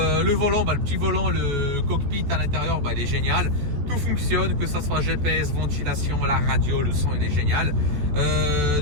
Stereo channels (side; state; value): left; late; 14 ms